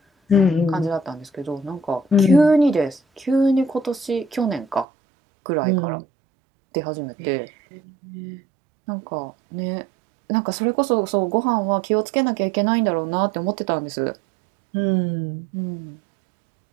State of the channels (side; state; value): left; drops out; at 4.9 s